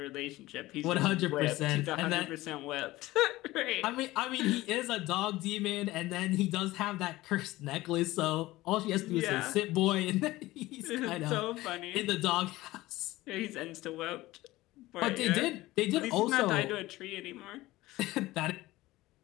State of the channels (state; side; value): quieter; right; 18.1 dB